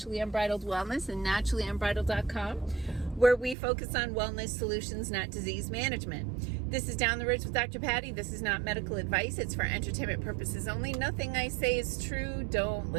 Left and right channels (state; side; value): drops out; left; at 3.6 s